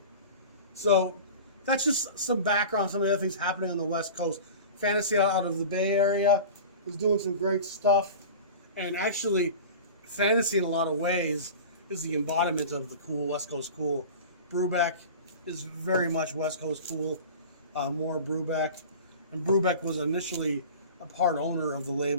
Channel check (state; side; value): inverted; both; correlation -0.36